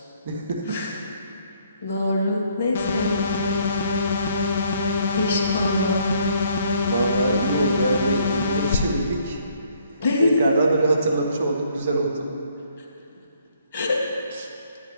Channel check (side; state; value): both; inverted; correlation -0.65